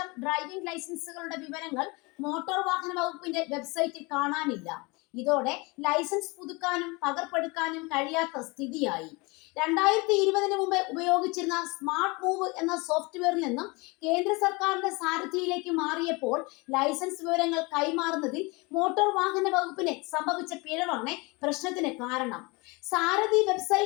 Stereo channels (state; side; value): quieter; right; 26.4 dB